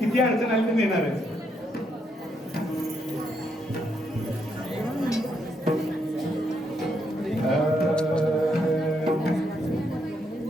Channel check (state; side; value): normal; both; correlation 0.77